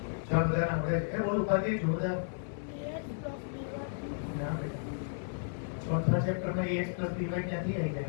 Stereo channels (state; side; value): silent; right; digital silence